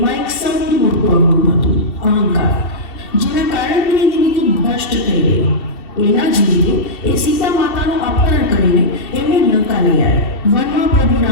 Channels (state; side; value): late; right; 2.7 ms